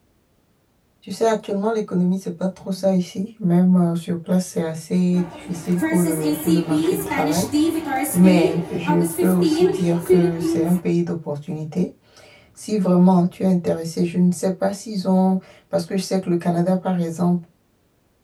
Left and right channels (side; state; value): both; identical; correlation 1.00